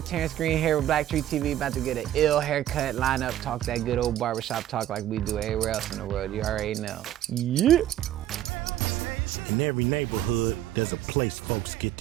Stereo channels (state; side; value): quieter; left; 12.5 dB